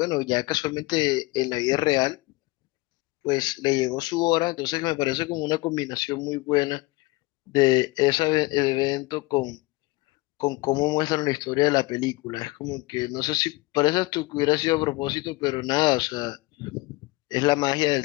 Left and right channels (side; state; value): right; quieter; 22.4 dB